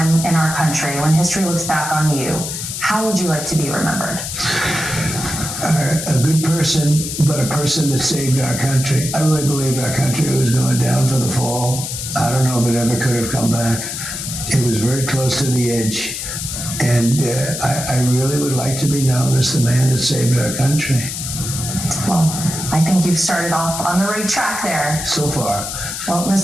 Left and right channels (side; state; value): left; noise; hiss, 6 dB below the sound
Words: in our country, when history looks back on you, how would you like to be remembered? A good person, but a person that saved our country. I really believed our country was going down for the fall. I don't know if it ever could have come back. It was very close to the edge. And I really would like to be known as the man that saved our country. Well, I think you've started off on the right track there. So far. Well,